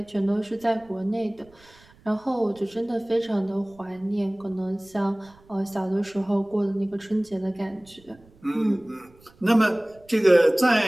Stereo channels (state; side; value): noise; right; rumble, 28 dB below the sound